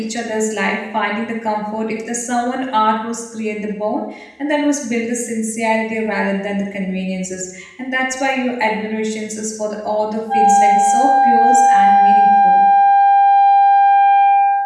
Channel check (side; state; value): both; identical; correlation 1.00